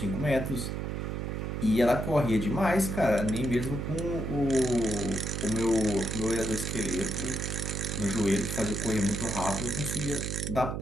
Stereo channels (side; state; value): right; noise; hum, 3 dB below the sound